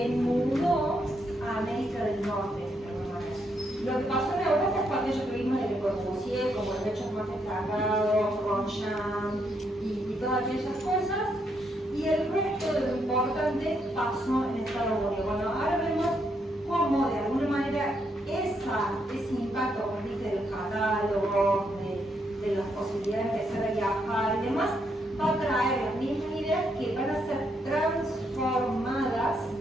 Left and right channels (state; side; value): normal; both; correlation 0.77